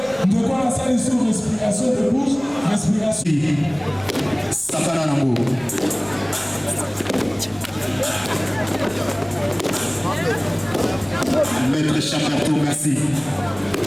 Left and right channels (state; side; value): noise; left; rumble, 25 dB below the sound